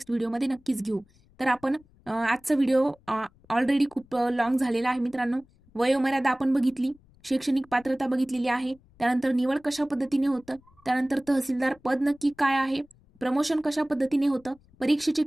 व्हिडिओमध्ये नक्कीच घेऊ. तर आपण आजचा व्हिडिओ ऑलरेडी खूप लॉंग झालेला आहे मित्रांनो. वयोमर्यादा आपण बघितली, शैक्षणिक पात्रता बघितलेली आहे, त्यानंतर निवड कशा पद्धतीने होतं, त्यानंतर तहसीलदार पद नक्की काय आहे, प्रमोशन कशा पद्धतीने होतं, परीक्षेचे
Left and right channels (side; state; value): left; noise; rumble, 30 dB below the sound